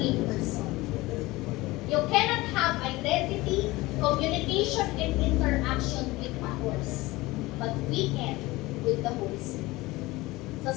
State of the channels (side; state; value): right; quieter; 20.3 dB